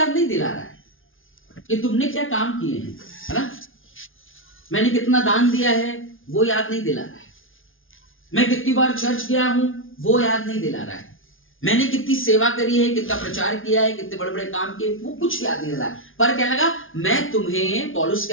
नहीं दिला रहा है कि तुमने क्या काम किए हैं, है ना? मैंने कितना दान दिया है वो याद नहीं दिला रहा है। मैं कितनी बार चर्च गया हूं वो याद नहीं दिला रहा है। मैंने कितनी सेवा करी है, कितना प्रचार किया है, कितने बड़े बड़े काम किए, वो कुछ याद नहीं दिला रहा है। पर क्या लगा? मैं तुम्हें, पौलुस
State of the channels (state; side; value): late; right; 0.58 ms